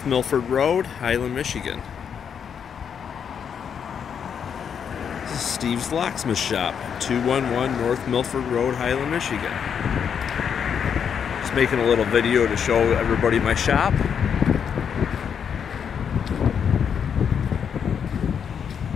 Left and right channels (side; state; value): right; quieter; 7.5 dB